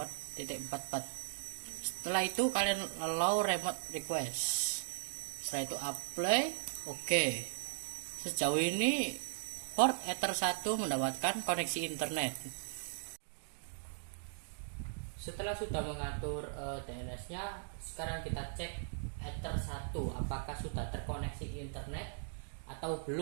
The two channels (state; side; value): silent; left; digital silence